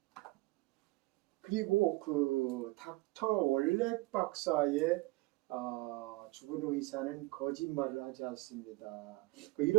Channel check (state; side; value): quieter; left; 21.0 dB